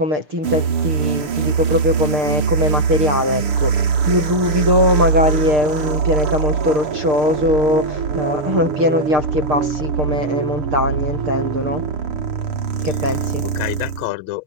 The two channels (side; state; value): left; late; 7.0 ms